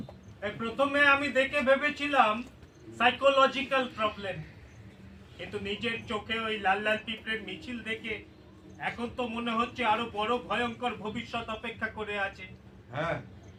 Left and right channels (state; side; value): identical; both; correlation 1.00